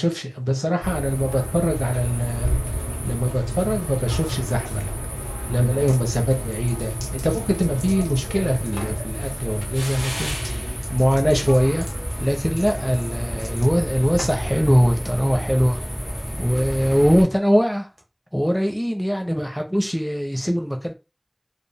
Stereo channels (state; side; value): identical; both; correlation 1.00